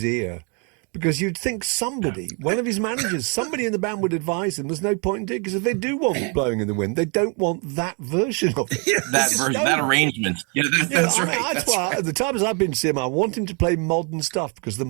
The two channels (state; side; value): quieter; left; 34.9 dB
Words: ear. Because you'd think somebody, one of his managers, somebody in the band would advise him there's no point in doing it, because if they do want Blowing in the Wind, they don't want that version of it. That arrangement. Yeah, that's right. That's why, at the times I've been to see him, I want him to play modern stuff, because the